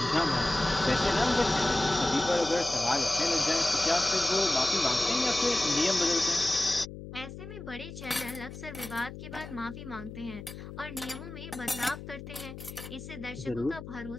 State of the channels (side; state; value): left; noise; hum, 12 dB below the sound